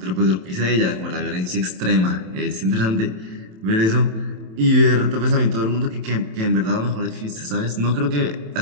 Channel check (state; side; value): late; left; 27 ms